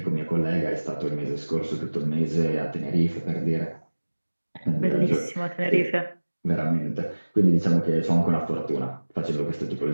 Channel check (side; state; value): both; inverted; correlation -1.00